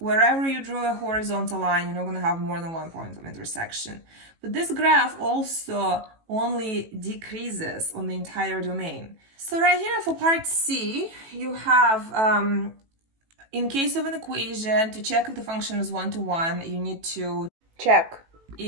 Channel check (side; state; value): left; late; 18 ms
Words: you draw a horizontal line, you're not going to have more than one point of intersection. But this graph also only decreases on the entire domain. So right here for part C, you have, in case of an equation, to check if the function is one-to-one, you need to check